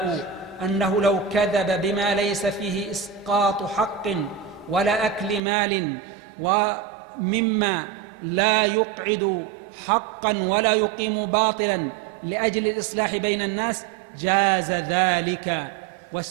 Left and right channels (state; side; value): drops out; left; at 5.4 s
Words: أنه لو كذب بما ليس فيه إسقاط حق ولا أكل مال ومما لا يقعد حقا ولا يقيم باطلا لأجل الإصلاح بين الناس جاز ذلك.